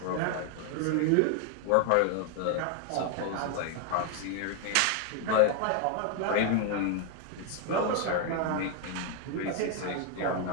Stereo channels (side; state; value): both; different; correlation 0.01